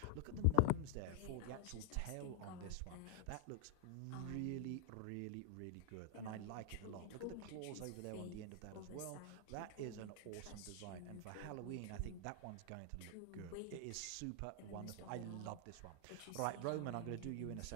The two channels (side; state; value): both; different; correlation 0.00